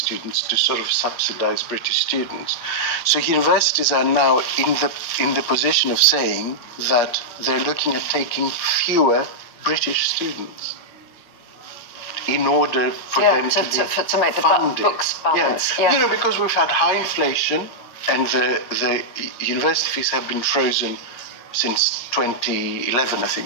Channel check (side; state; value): right; late; 8.5 ms